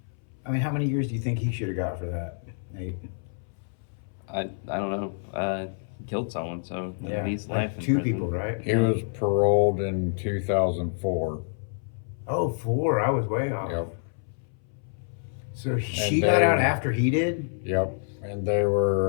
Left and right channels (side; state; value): right; silent; 60 dB below the other